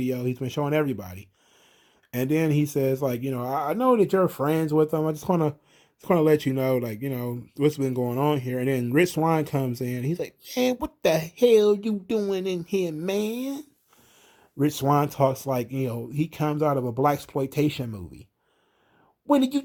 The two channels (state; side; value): identical; both; correlation 1.00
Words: he's been showing everybody. And then he says, like, I know that you're friends with them. I just wanna let you know, like, what's been going on here. And then Rich Swann comes in. He's like, man, what the hell you doing in here, man? Rich Swann talks like, he comes out of a blaxploitation movie. What are